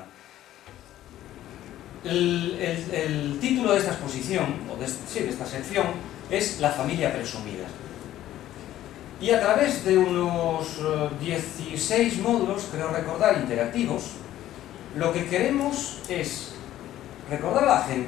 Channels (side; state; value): right; quieter; 13.2 dB